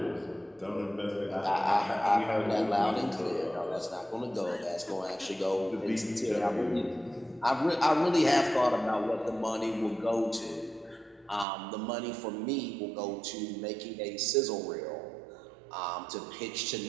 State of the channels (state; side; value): drops out; left; at 11.5 s